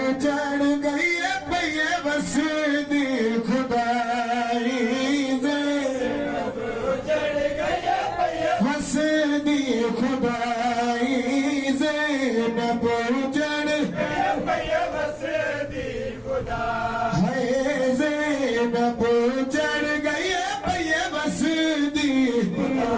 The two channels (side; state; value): both; identical; correlation 1.00